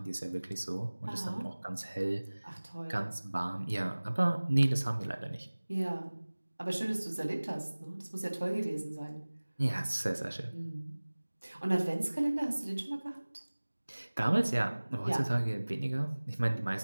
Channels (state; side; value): inverted; both; correlation -1.00